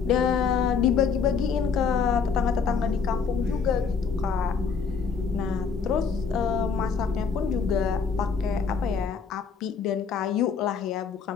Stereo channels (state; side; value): quieter; right; 5.8 dB